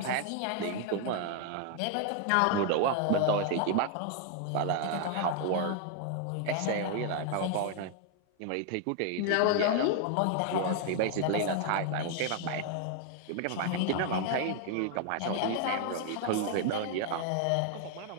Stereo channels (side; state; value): both; different; correlation 0.00